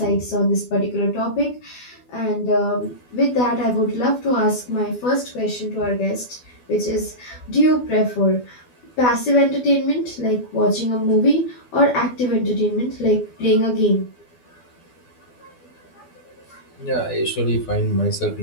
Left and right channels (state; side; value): late; right; 12 ms